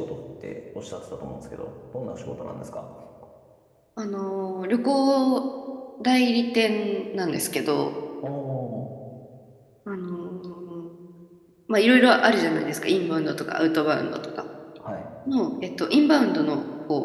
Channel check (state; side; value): identical; both; correlation 1.00